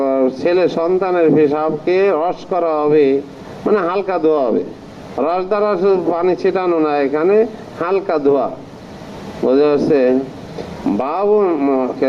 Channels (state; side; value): identical; both; correlation 1.00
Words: ছেলে সন্তানের পেশাবকে রস করা হবে, মানে হালকা ধোয়া হবে। রস দ্বারা পানি ছিটানো না, এখানে হালকা ধোয়া, বোঝা যাচ্ছে।